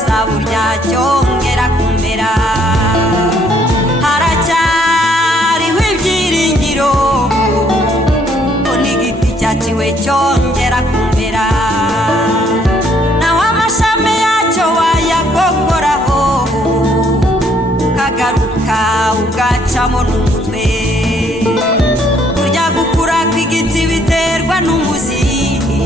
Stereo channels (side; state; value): both; normal; correlation 0.66